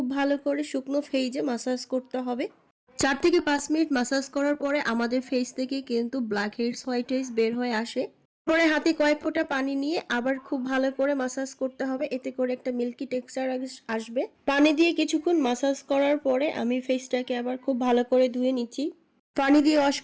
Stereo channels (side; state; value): both; identical; correlation 1.00